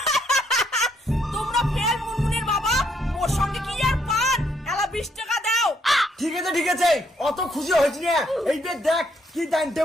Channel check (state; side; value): normal; both; correlation 0.72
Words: তোমরা ফেল মুনমুনির বাবা, মোর সঙ্গে কি আর পান এলা 20 টাকা দাও। ঠিক আছে অত খুশি হয়েছি না, এই যে দেখ কি জানতে